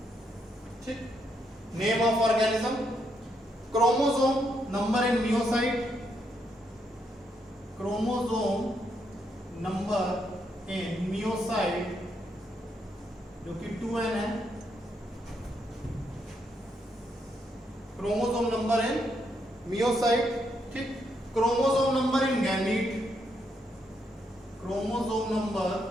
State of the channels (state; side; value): normal; both; correlation 0.77